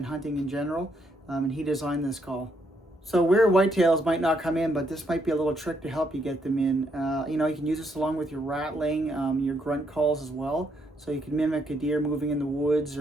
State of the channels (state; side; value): normal; both; correlation 0.74